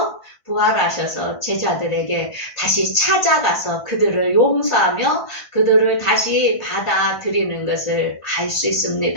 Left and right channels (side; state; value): right; late; 1.5 ms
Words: 부활하셔서 제자들에게 다시 찾아가서 그들을 용서하며 그들을 다시 받아들이는 것을 알 수